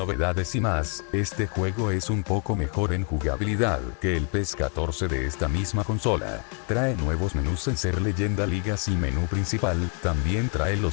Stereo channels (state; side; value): quieter; right; 38.9 dB